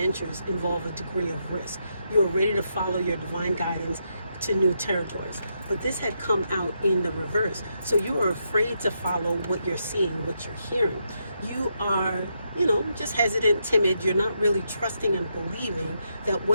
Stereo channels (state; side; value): inverted; both; correlation -0.81